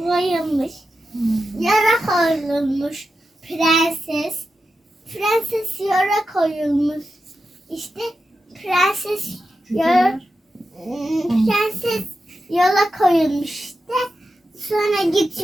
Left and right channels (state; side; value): normal; both; correlation 0.90